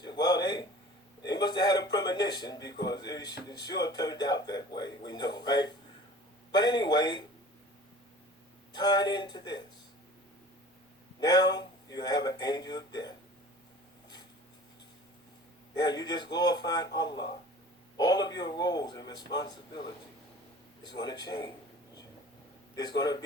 Well, they must have had a premonition because it sure turned out that way. We know, right? But anyway, tying into this. Now you have an angel of death. Now you just glorified Allah. All of your roles and responsibility is going to change. There's going to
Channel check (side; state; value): both; normal; correlation 0.43